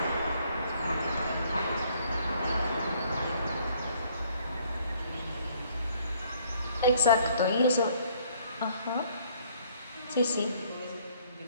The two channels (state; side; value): inverted; both; correlation -0.62